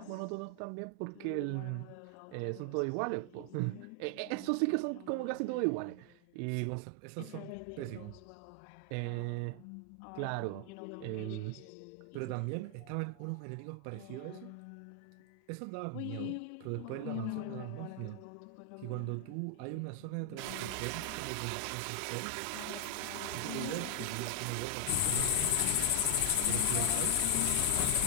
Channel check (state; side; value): different; both; correlation 0.00